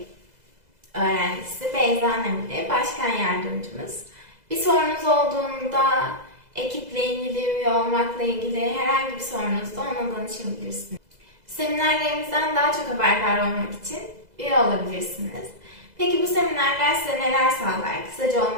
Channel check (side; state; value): left; late; 2.0 ms